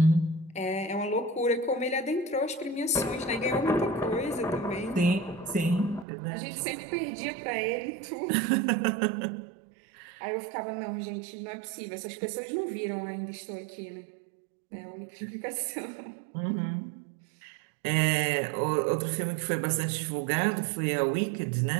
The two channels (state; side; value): drops out; left; at 6.1 s